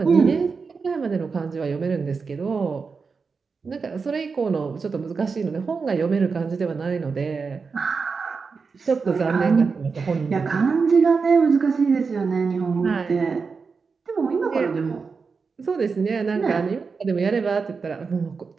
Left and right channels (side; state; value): left; quieter; 5.0 dB